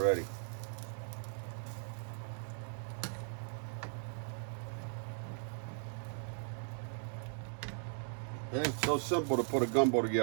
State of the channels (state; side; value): silent; left; 52 dB below the other